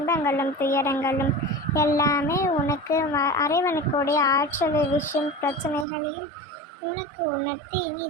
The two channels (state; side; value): drops out; left; at 5.9 s